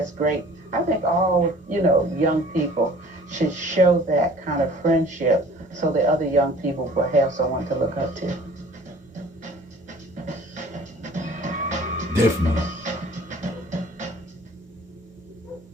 great. I think all, you know, young people should show that kind of friendship so the other young people will have someone to look up to. Definitely.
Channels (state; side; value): normal; both; correlation 0.49